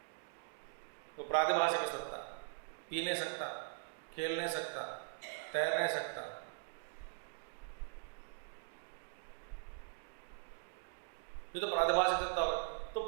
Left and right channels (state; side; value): silent; left; digital silence